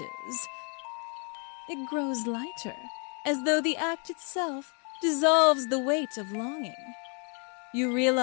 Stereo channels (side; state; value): right; quieter; 37.8 dB